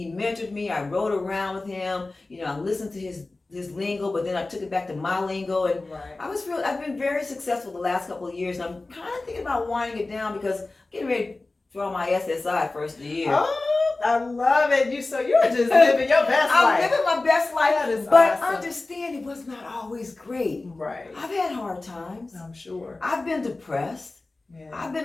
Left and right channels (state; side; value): quieter; right; 3.2 dB